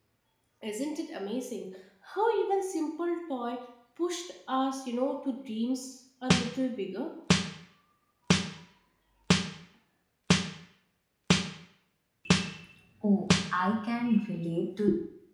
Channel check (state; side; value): identical; both; correlation 1.00